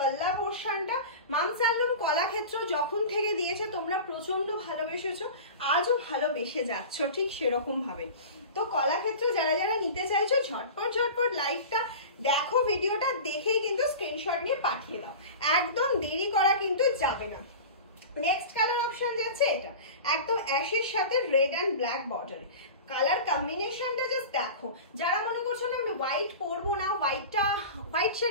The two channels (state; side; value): inverted; both; correlation -0.33